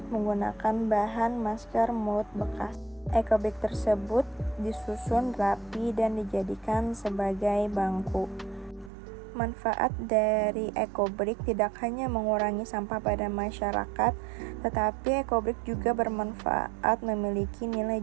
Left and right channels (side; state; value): left; drops out; at 8.9 s